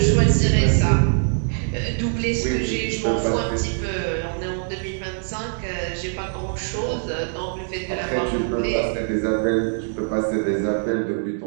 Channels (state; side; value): silent; left; 64 dB below the other